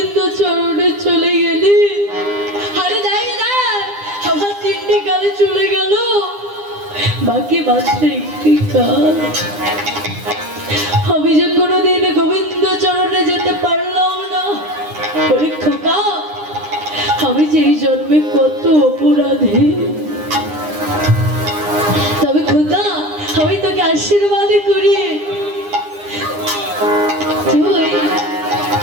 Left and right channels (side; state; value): left; late; 9.8 ms